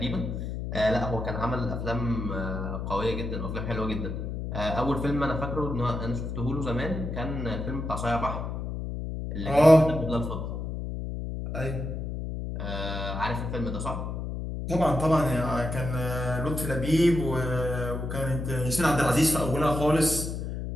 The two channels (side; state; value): left; noise; hum, 5 dB below the sound